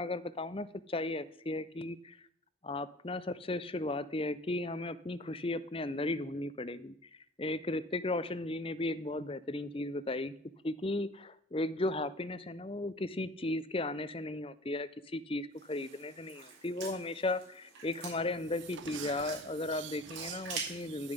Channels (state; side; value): normal; both; correlation 0.45